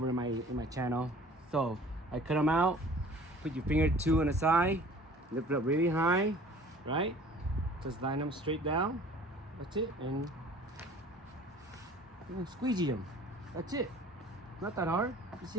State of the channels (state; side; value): normal; both; correlation 0.48